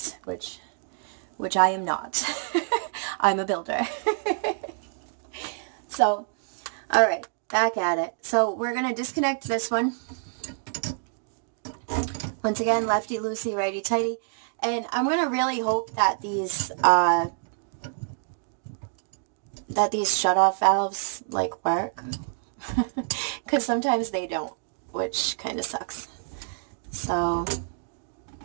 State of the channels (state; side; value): silent; left; digital silence